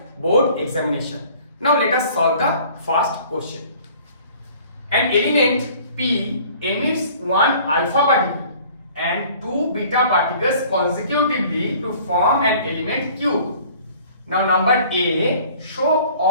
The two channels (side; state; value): both; inverted; correlation -0.52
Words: board examination. Now let us solve the first question. An element P emits one alpha particle and two beta particles consecutively to form an element Q. Now number A, show